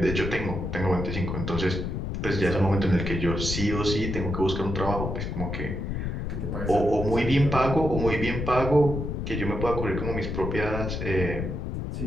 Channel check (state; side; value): noise; left; rumble, 3 dB below the sound